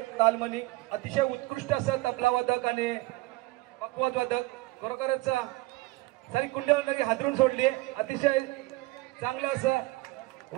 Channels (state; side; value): quieter; left; 21.0 dB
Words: तालमनी अतिशय उत्कृष्ट असं तबला वादक आणि पकवाद वादक, खरोखरच सारी कुंडली हादरून सोडली। अतिशय चांगलं असं